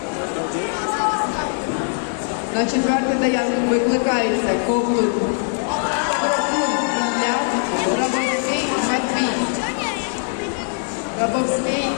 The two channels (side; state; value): right; silent; 65 dB below the other